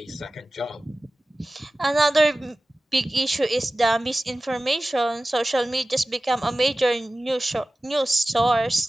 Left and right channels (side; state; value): both; normal; correlation 0.96